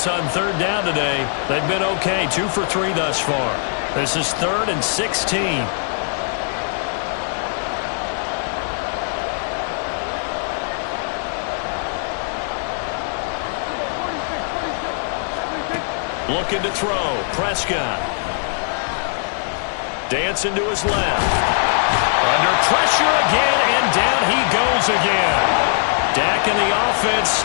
on 3rd down today, they've been okay. 2 for 3 thus far. This is 3rd and 16. Looking to throw. Prescott. Dancing to his left. Under pressure again, and down he goes again. Dak and the offense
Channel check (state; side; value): silent; right; 65 dB below the other